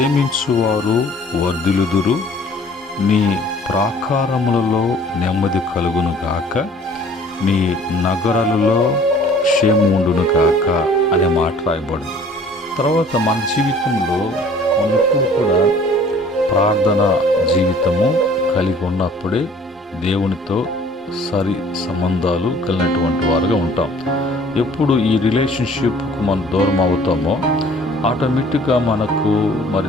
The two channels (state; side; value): normal; both; correlation 0.52